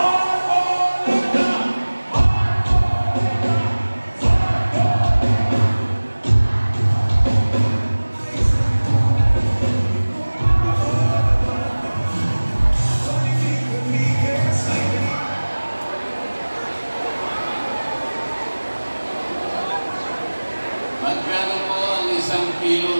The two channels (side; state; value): both; inverted; correlation -1.00